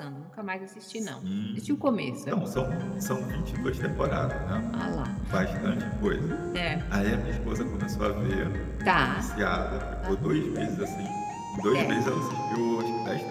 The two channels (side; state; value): both; identical; correlation 1.00